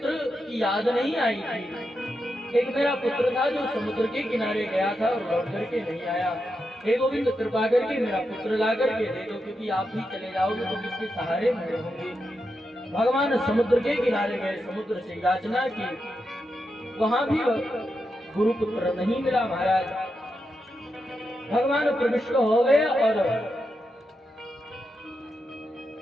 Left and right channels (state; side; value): normal; both; correlation 0.86